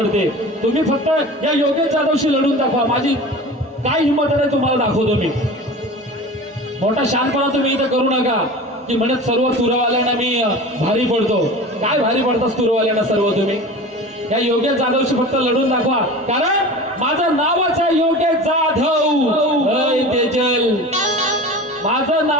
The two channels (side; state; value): both; normal; correlation 0.35